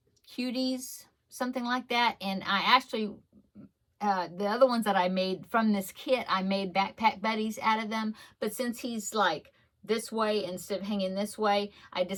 Cuties, something like that. And I actually, the other ones that I made from this kit, I made backpack buddies out of them. But since he's like this way instead of hanging this way, I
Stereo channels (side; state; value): both; identical; correlation 1.00